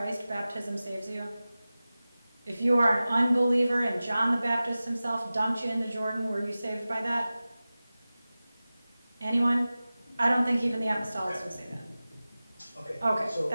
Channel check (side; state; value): both; inverted; correlation -0.96